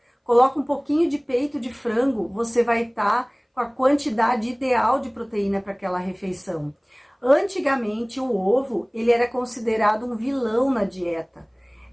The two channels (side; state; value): both; identical; correlation 1.00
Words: coloca um pouquinho de peito de frango, você vai estar com a quantidade ideal de proteína para aquela refeição. Antigamente, o ovo, ele era considerado um vilão na dieta.